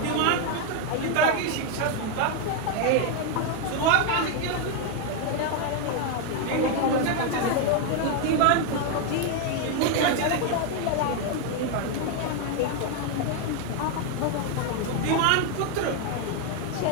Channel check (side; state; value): both; different; correlation 0.01